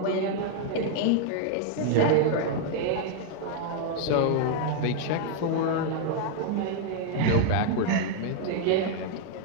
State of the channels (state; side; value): different; both; correlation -0.01